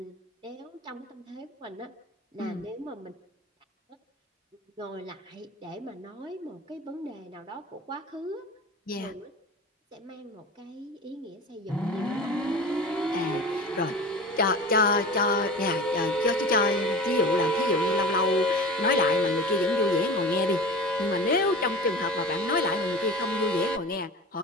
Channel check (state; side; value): normal; both; correlation 0.34